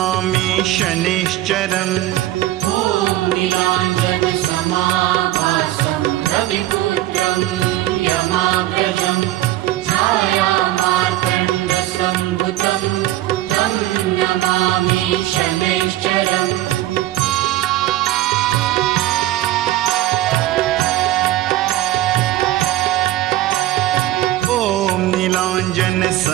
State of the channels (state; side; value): quieter; left; 15.3 dB